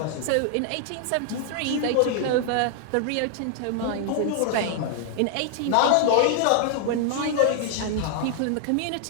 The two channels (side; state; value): both; different; correlation 0.00